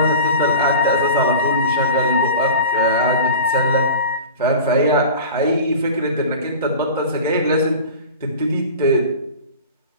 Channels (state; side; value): inverted; both; correlation -0.36